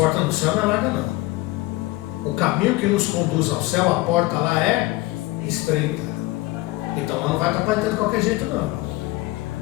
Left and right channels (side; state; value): right; quieter; 19.9 dB